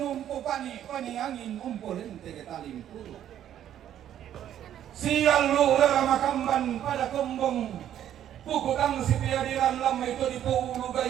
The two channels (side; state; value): left; quieter; 10.9 dB